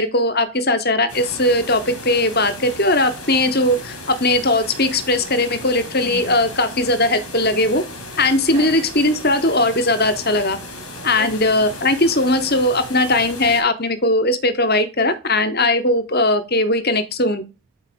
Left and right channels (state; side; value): normal; both; correlation -0.07